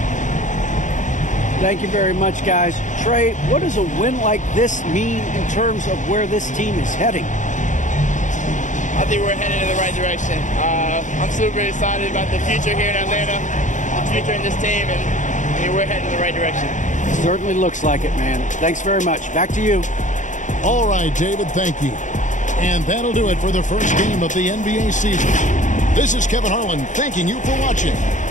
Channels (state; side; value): late; right; 0.36 ms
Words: Thank you very much, guys. Trey, what does a win like this mean in terms of where this team is heading? I think we're headed in the right direction. I'm super excited about the future here in Atlanta, the future in this team, and we're heading in the right direction. Certainly looks like it, man. Thanks very much. Back to you. All right, David, thank you. And that'll do it for the first game of the NBA season. This is Kevin Harlan thanking you for watching.